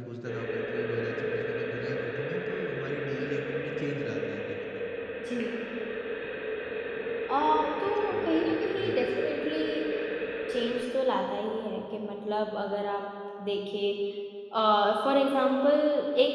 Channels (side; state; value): both; identical; correlation 1.00